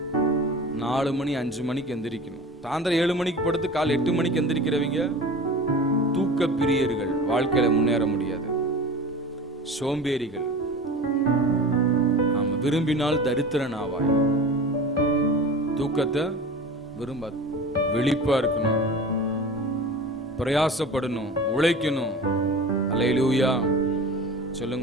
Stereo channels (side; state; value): both; normal; correlation 0.35